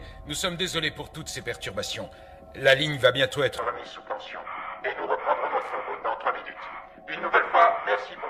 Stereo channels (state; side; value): identical; both; correlation 1.00